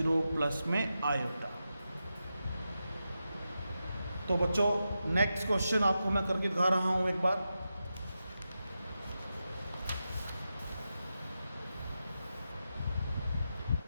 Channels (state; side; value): inverted; both; correlation -0.89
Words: प्लस में आयोटा। तो बच्चों नेक्स्ट क्वेश्चन आपको मैं करके दिखा रहा हूँ एक बार।